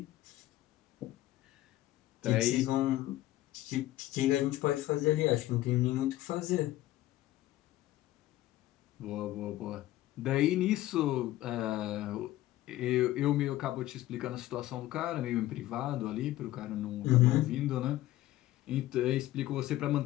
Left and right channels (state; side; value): quieter; right; 15.5 dB